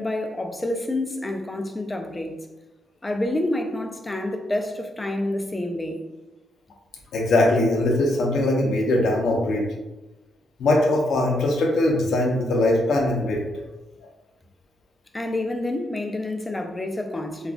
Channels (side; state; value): both; normal; correlation 0.77